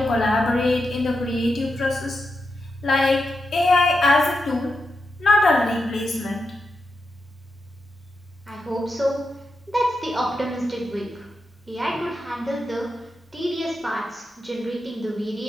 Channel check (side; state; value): both; normal; correlation 0.87